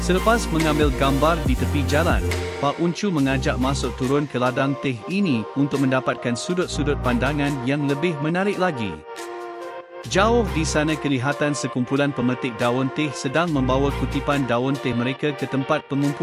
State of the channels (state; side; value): identical; both; correlation 1.00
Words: Selepas mengambil gambar di tepi jalan, Pak Uncu mengajak masuk turun ke ladang teh ini untuk mendapatkan sudut-sudut pandangan yang lebih menarik lagi. Jauh di sana kelihatan sekumpulan pemetik daun teh sedang membawa kutipan daun teh mereka ke tempat